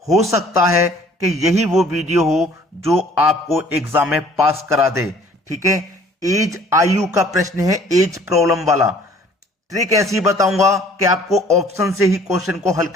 हो सकता है कि यही वो वीडियो हो जो आपको एग्जाम में पास करा दे। ठीक है, एज आयु का प्रश्न है, एज प्रॉब्लम वाला। ट्रिक ऐसी बताऊंगा कि आपको ऑप्शन से ही क्वेश्चन को हल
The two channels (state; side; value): normal; both; correlation 0.55